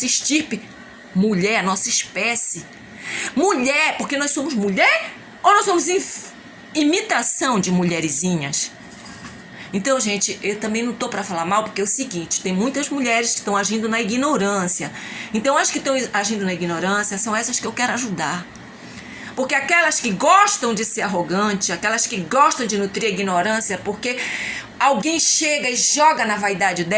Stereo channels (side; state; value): both; identical; correlation 1.00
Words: estirpe. Mulher, a nossa espécie. Mulher, porque nós somos mulher ou nós somos imitação de mulherzinhas? Então, gente, eu também não tô para falar mal, porque é o seguinte, tem muitas mulheres que estão agindo na ignorância. Então, as que estão agindo na ignorância são essas que eu quero ajudar. Porque aquelas que gostam de ser arrogante, aquelas que gostam de nutrir a ignorância, porque alguém chega e joga na vaidade